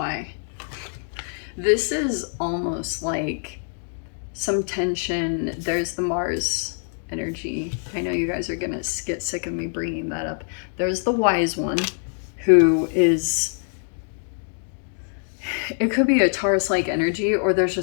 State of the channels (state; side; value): silent; right; 62 dB below the other